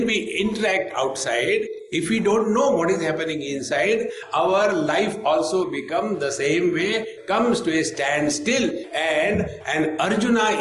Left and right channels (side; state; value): both; identical; correlation 1.00